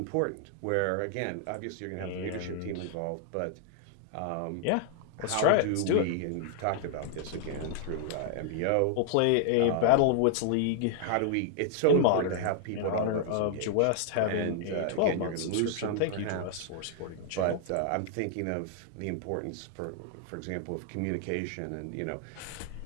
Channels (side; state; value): both; different; correlation -0.01